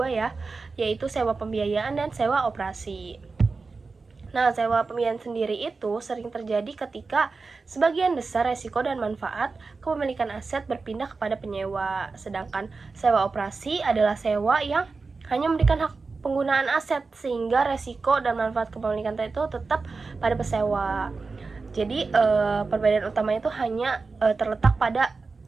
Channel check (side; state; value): left; quieter; 4.2 dB